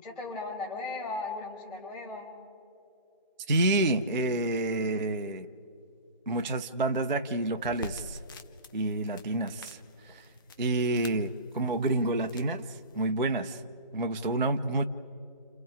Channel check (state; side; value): inverted; both; correlation -0.32